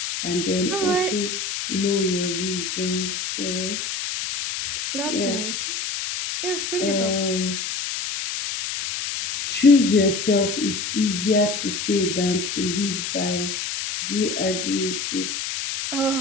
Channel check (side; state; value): left; noise; hiss, 4 dB below the sound